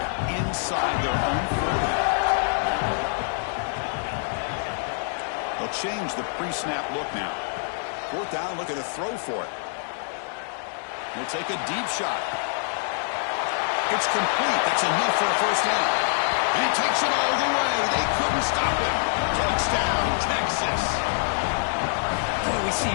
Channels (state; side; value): silent; right; digital silence